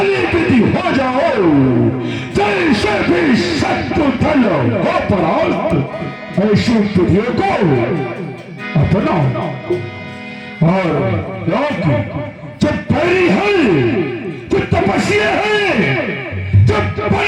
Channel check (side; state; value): both; identical; correlation 1.00